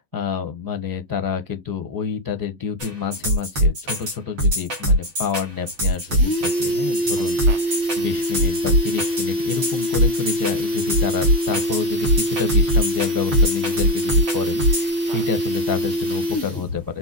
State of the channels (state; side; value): late; left; 7.4 ms